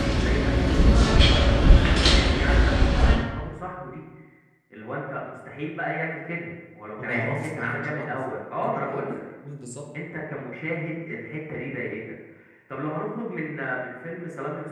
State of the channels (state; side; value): identical; both; correlation 1.00